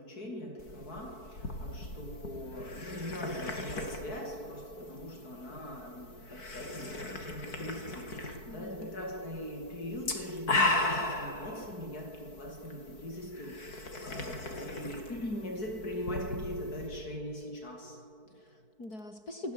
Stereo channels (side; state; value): right; late; 4.6 ms